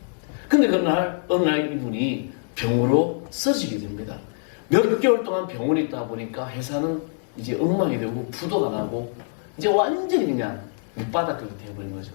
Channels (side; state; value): right; silent; digital silence